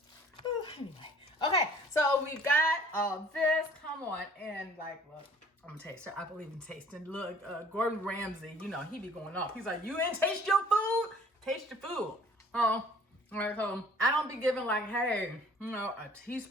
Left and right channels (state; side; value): normal; both; correlation 0.53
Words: Ooh, anyway. Okay, so we got all this. Come on, and like, look. I'm gonna taste it. I believe in tasting. Look, Gordon Ramsay, you know, he be going off. He's like, you ain't taste your food? Taste your food. Right, so I don't be giving like, hey, you know, a